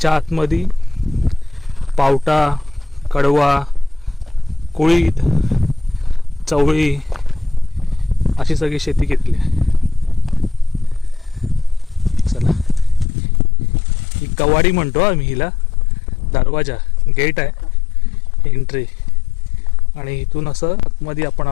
आतमध्ये पावटा, कडवा, कुळीद, चवळी अशी सगळी शेती केलेली आहे. चला, ही कवाडी म्हणतो आम्ही हिला. दरवाजा, गेट आहे एंट्री, आणि इथून असं आतमध्ये आपण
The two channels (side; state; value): right; drops out; at 13.1 s